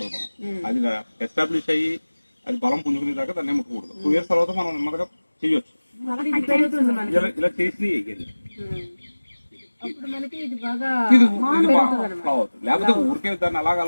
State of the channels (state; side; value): inverted; both; correlation -1.00